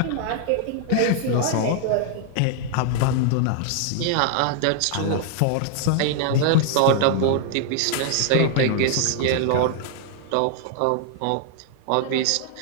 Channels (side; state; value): both; different; correlation 0.00